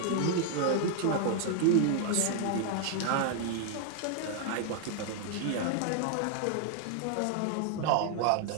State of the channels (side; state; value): both; different; correlation 0.00